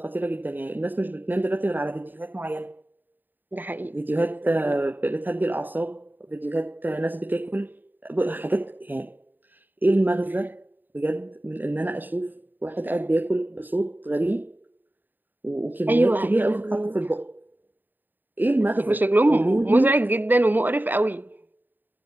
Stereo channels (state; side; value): late; left; 0.090 ms